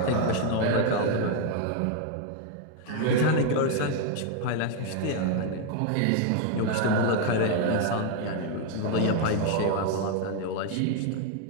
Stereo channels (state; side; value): different; both; correlation 0.01